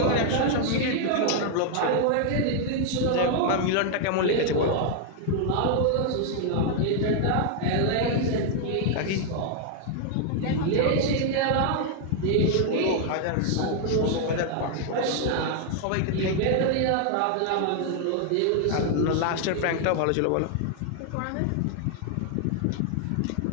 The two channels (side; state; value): both; different; correlation 0.00